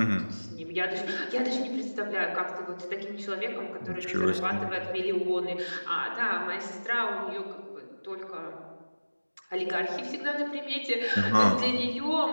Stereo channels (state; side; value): inverted; both; correlation -1.00